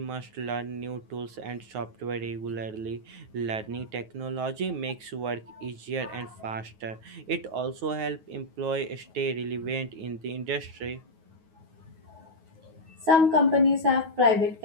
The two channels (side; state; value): left; late; 9.4 ms